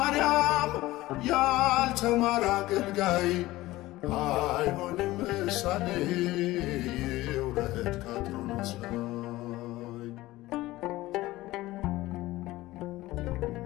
ያልተማረ አገልጋይ አይሆንም ምሳሌ ይውረድ ከአትሮኖስ ላይ።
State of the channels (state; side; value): quieter; right; 17.8 dB